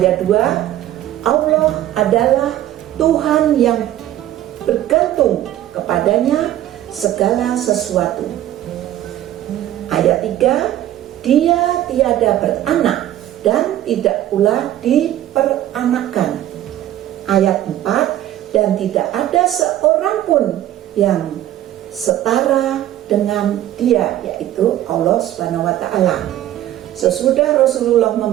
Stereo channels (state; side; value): quieter; left; 13.0 dB